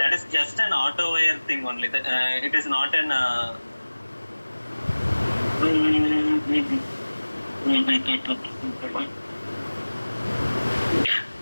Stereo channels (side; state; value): both; inverted; correlation -1.00